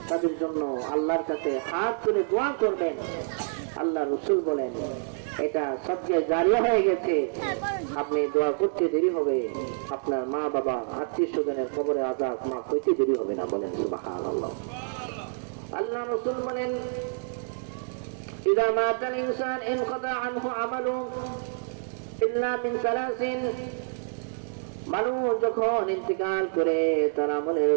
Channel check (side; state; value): left; silent; digital silence